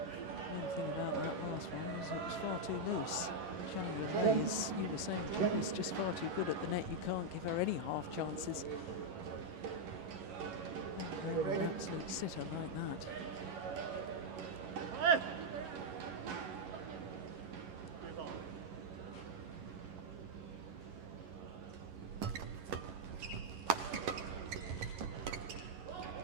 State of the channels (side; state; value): left; late; 11 ms